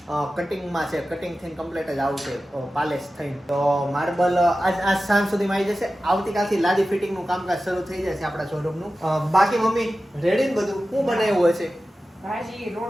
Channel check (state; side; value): normal; both; correlation 0.94